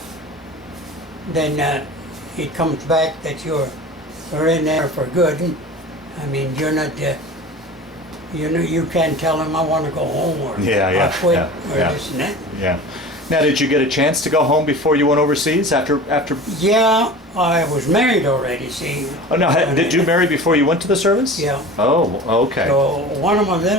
then it comes back that you're in there for good. I mean, you're not. You can't tell them I want to go home or Yeah, yeah, I quit yeah, or yeah. this and that. yeah. Now, did you get a chance to go home before you went overseas? After? Yeah, I was married already. See. Oh no! Did you marry before you went to the service? Yeah. Oh, okay. So one of my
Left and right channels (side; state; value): both; normal; correlation 0.36